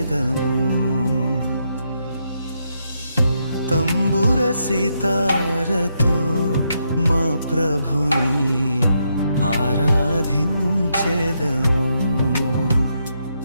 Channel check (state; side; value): inverted; both; correlation -0.80